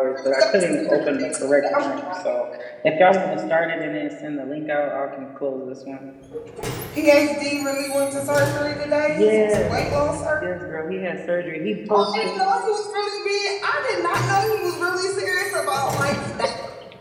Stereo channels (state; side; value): identical; both; correlation 1.00